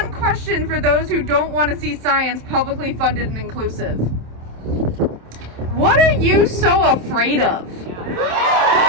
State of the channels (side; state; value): left; late; 27 ms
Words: question for those who don't want to see science publicly funded and inclusive. What are you so afraid of?